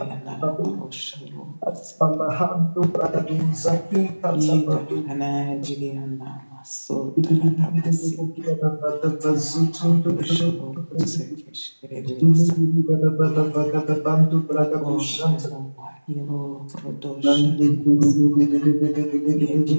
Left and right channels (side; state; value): both; inverted; correlation -1.00